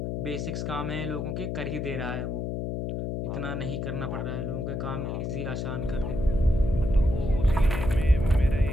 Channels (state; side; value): noise; left; hum, 2 dB below the sound